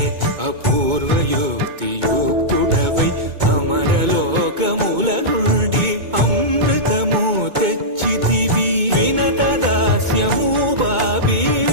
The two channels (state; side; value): late; left; 2.2 ms